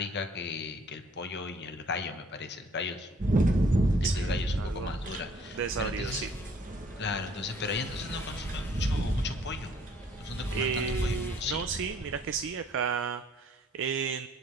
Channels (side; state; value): both; normal; correlation 0.59